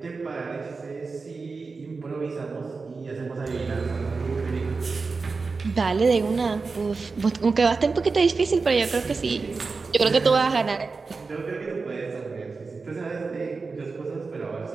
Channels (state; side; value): quieter; left; 4.3 dB